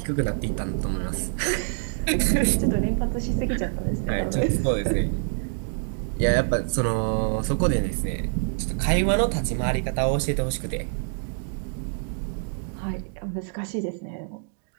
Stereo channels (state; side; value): silent; left; digital silence